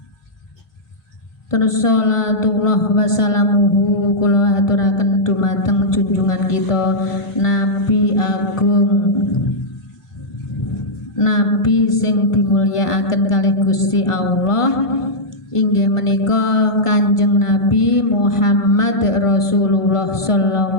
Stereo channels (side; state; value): right; late; 1.4 ms